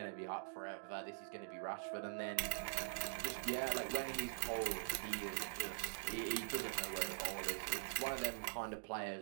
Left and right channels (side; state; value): left; silent; digital silence